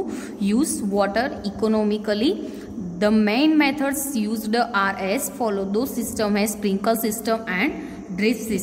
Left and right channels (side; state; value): both; identical; correlation 1.00